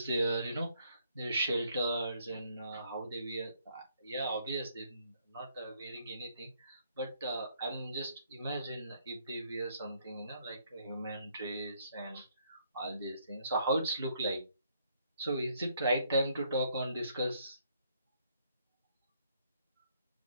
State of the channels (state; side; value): inverted; both; correlation -0.69